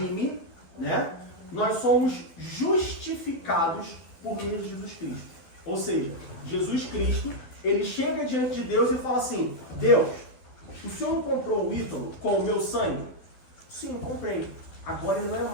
né, nós somos justificados por meio de Jesus Cristo. Ou seja, Jesus Cristo, ele chega diante de Deus e fala assim, Deus, o Senhor não comprou o Ítalo com o meu sangue? Sim, comprei. Agora ele não é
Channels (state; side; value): late; right; 12 ms